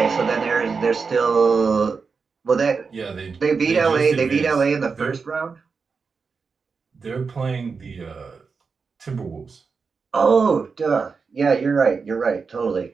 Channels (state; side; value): quieter; left; 5.1 dB